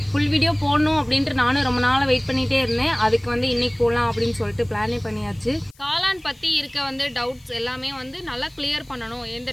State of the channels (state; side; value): noise; left; hiss, 29 dB below the sound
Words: ஃபுல் வீடியோ போடணும் அப்படின்ட்டு நானும் ரொம்ப நாளாக வெயிட் பண்ணிகிட்டே இருந்தேன். அதுக்கு வந்து இன்றைக்கி போடலாம் அப்படின்னு சொல்லிட்டு பிளானே பண்ணியாச்சு. காளான் பற்றி இருக்க வந்து டவுட்ஸ் எல்லாமே வந்து நல்லா கிளியர் பண்ணணும், எந்த